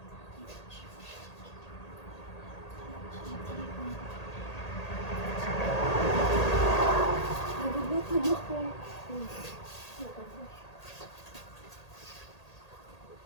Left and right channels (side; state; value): right; late; 1.8 ms